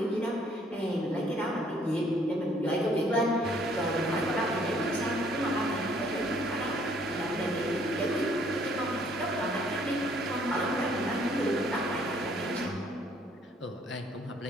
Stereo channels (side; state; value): both; normal; correlation 0.63